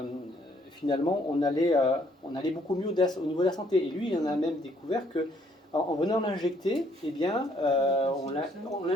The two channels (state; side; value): normal; both; correlation 0.66